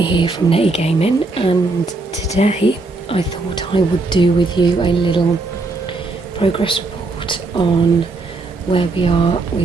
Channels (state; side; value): quieter; left; 3.4 dB